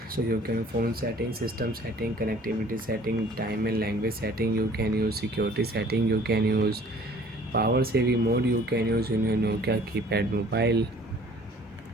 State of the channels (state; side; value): normal; both; correlation 0.53